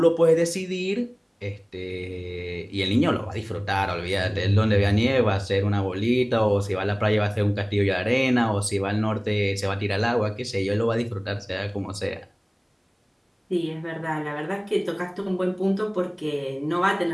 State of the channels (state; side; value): identical; both; correlation 1.00